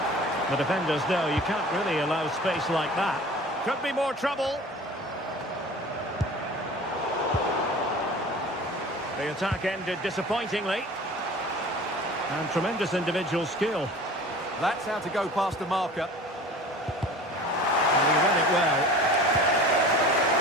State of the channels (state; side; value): normal; both; correlation 0.41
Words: The defenders know you can't really allow space like that. Could be more trouble. The attack ended disappointingly. And tremendous individual skill. That's how to go past the marker. And he read it well.